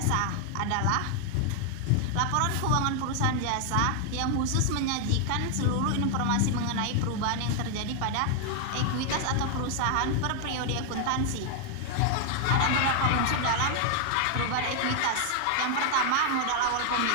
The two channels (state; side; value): different; both; correlation 0.00